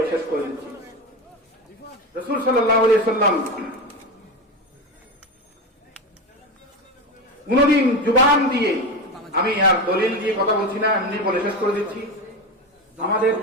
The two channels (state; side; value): normal; both; correlation 0.20